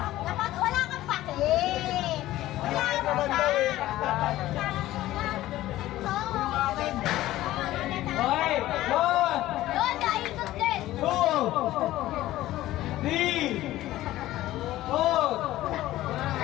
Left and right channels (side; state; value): right; quieter; 15.4 dB